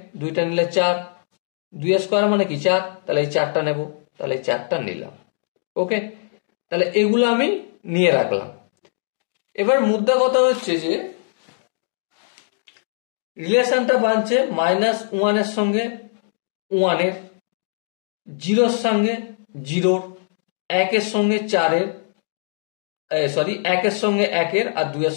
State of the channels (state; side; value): silent; right; digital silence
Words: 2টা নিলে 4, 2 স্কোয়ার মানে কি 4, তাহলে এই 4টা নেব, তাহলে এই 4টা নিলাম। ওকে, তাহলে এগুলো আমি নিয়ে রাখলাম। এবার মুদ্রা কথা হচ্ছে যে রিলেশনটা বানছে -1 এর সঙ্গে 1 এর, 0 এর সঙ্গে 0, 1 এর সঙ্গে 4 এর, 1 এর সঙ্গে 1 এর, আর 2 এর